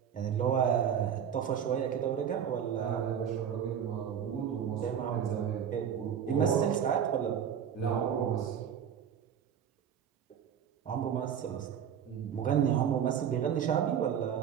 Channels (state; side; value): quieter; left; 8.5 dB